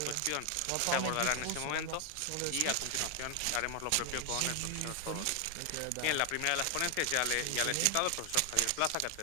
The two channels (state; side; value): different; both; correlation 0.00